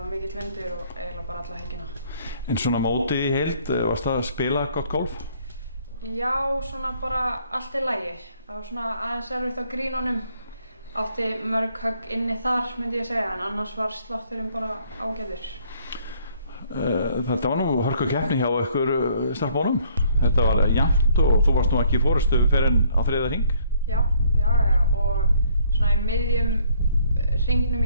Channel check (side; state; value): both; inverted; correlation -0.64